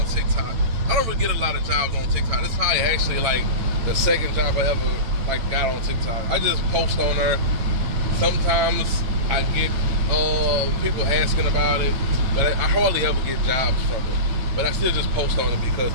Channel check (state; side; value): late; left; 9.0 ms